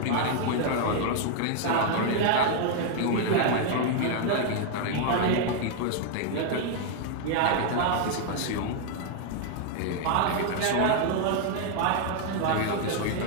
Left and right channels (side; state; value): both; different; correlation 0.00